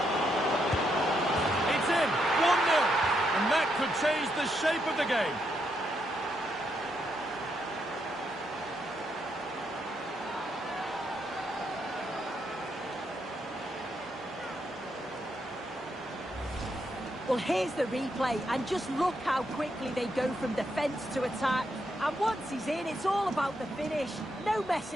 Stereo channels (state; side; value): normal; both; correlation 0.79